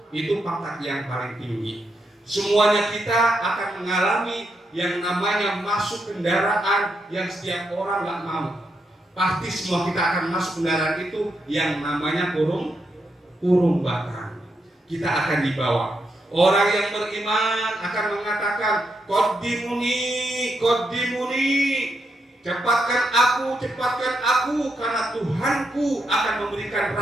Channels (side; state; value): both; normal; correlation 0.81